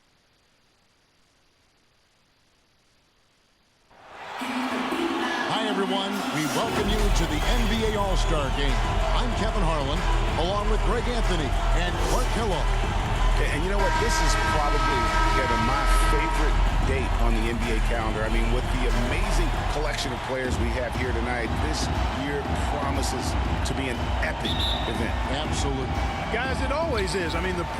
Hi, everyone. We welcome you to the NBA All-Star Game. I'm Kevin Harlan, along with Greg Anthony and Clark Kellogg. And you know what? This is probably, Kevin, my favorite date on the NBA calendar. I mean, with the amazing collection of players we have here tonight, this year promises to be an epic event. Absolutely. Guys, it always is. I mean, the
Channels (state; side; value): identical; both; correlation 1.00